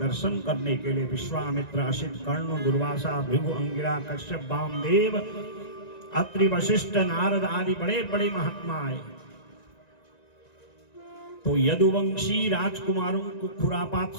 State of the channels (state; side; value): late; right; 1.9 ms